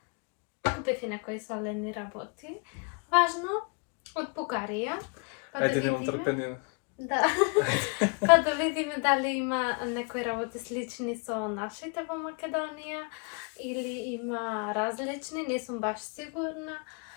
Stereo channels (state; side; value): quieter; right; 35.8 dB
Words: купив и некои солени работи. Важно, од Бугарија. Ајде, немам трпение. Да. Па да видиме дали има некои работи слични со нашите во Македонија или има различни, не сум баш сигурна.